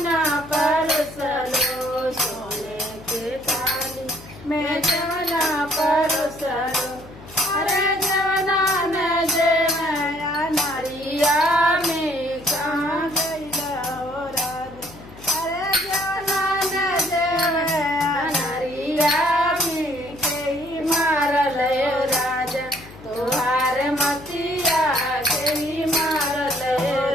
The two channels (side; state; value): left; noise; hum, 18 dB below the sound